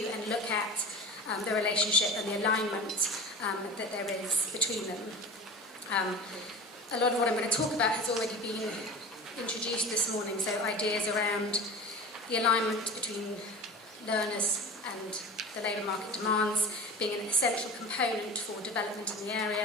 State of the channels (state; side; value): normal; both; correlation 0.34